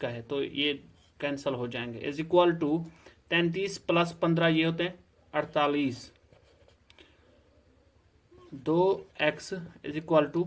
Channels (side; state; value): both; identical; correlation 1.00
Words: है तो ये कैंसिल हो जाएंगे। इज इक्वल टू 33 प्लस 15 ये होते हैं 48। 2x is equal to